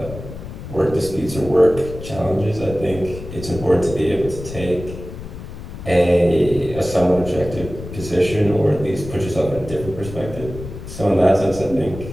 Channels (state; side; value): noise; left; rumble, 11 dB below the sound